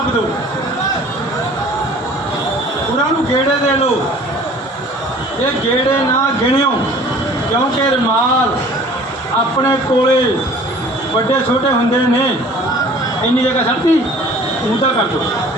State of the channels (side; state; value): both; normal; correlation 0.49